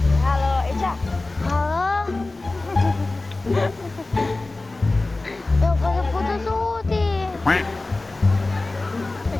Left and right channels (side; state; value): right; quieter; 3.1 dB